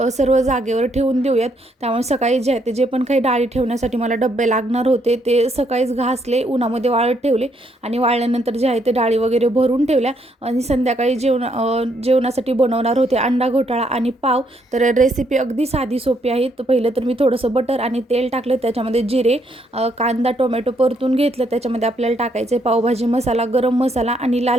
सर्व जागेवर ठेवून देऊयात. त्यामुळे सकाळी जे आहे ते जे पण काही डाळी ठेवण्यासाठी मला डब्बे लागणार होते ते सकाळीच घासले, उन्हामध्ये वाळत ठेवले. आणि वाळल्यानंतर जे आहे ते डाळी वगैरे भरून ठेवल्या. आणि संध्याकाळी जेवणासाठी बनवणार होते अंडा घोटाळा आणि पाव. तर रेसिपी अगदी साधी सोपी आहे. तर पहिलं तर मी थोडंसं बटर आणि तेल टाकलं, त्याच्यामध्ये जिरे, कांदा टोमॅटो परतून घेतलं. त्याच्यामध्ये आपल्याला टाकायचे पावभाजी मसाला, गरम मसाला आणि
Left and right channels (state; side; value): normal; both; correlation 0.72